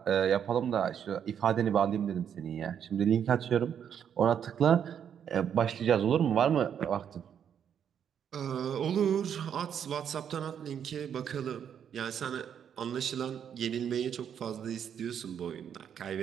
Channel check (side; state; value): left; quieter; 8.5 dB